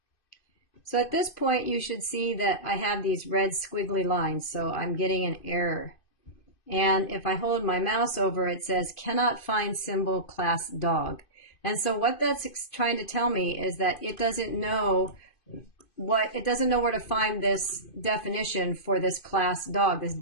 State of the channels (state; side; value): late; right; 2.5 ms